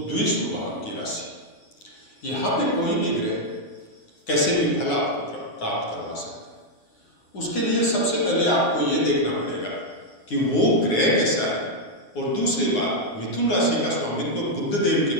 द्विशुभ भाव की राशि। यहाँ पे कोई भी ग्रह कैसे भी फल आपको प्राप्त करवा सकता है। उसके लिए सबसे पहले आपको ये देखना पड़ेगा कि वो ग्रह कैसा है। और दूसरी बात, मिथुन राशि का स्वामित्व बुध देव के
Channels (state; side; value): late; right; 9.7 ms